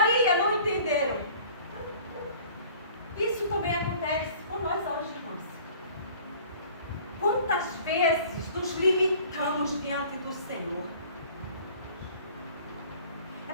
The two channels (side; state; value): both; inverted; correlation -0.49